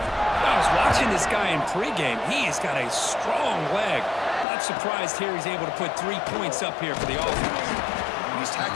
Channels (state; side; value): drops out; right; at 4.5 s